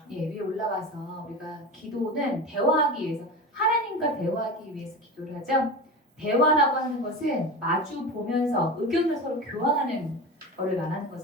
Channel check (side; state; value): both; normal; correlation 0.28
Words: 예, 위에 올라가서 우리가 기도는 대화하기 위해서 하나님과 대화하기 위해서 기도를 하죠. 대화라고 하는 것은 마주 보면서 의견을 서로 교환하는 것을 말하는